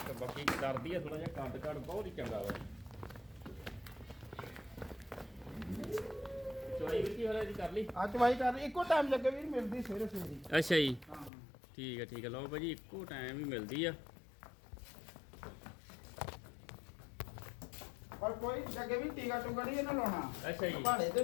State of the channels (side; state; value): right; drops out; at 11.3 s